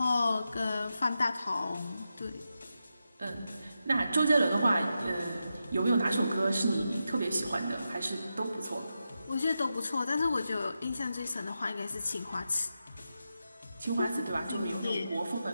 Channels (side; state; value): both; inverted; correlation -0.88